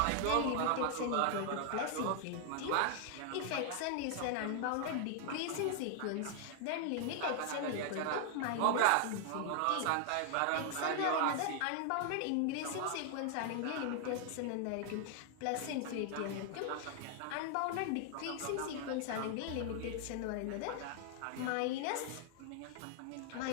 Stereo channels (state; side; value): different; both; correlation 0.00